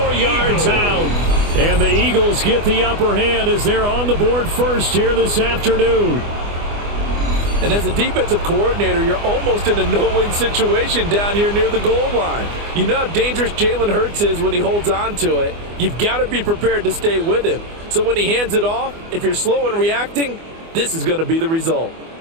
yards out. And the Eagles get the upper hand as they're on the board first here this afternoon. And as a defensive coordinator, you're almost in a no-win situation down here near the goal line. You know how dangerous Jalen Hurts is when he holds on to it. You've got to be prepared to stay with him. So when he hands it off, if you're slow in reacting, this is going to be the result.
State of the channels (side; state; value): left; late; 24 ms